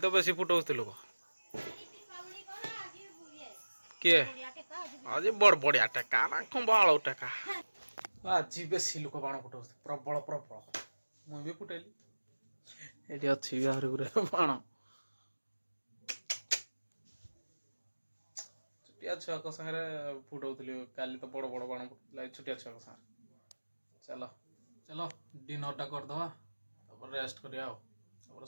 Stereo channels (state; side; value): inverted; both; correlation -1.00